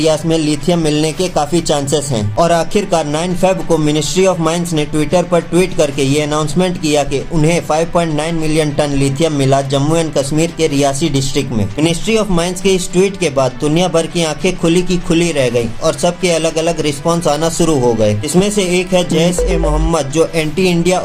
में लिथियम मिलने के काफी चांसेस हैं। और आखिरकार 9 फेब को मिनिस्ट्री ऑफ माइंस ने ट्विटर पर ट्वीट करके ये अनाउंसमेंट किया कि उन्हें 5.9 मिलियन टन लिथियम मिला जम्मू एंड कश्मीर के रियासी डिस्ट्रिक्ट में। मिनिस्ट्री ऑफ माइंस के इस ट्वीट के बाद दुनिया भर की आंखें खुली की खुली रह गई और सबके अलग अलग रिस्पॉन्स आना शुरू हो गए। इसमें से एक है जैश-ए-मोहम्मद, जो एंटी इंडिया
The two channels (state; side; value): identical; both; correlation 1.00